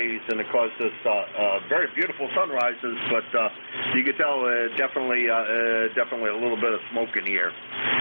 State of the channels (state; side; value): inverted; both; correlation -1.00